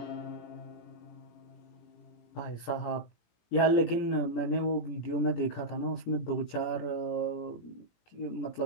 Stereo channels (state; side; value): late; right; 18 ms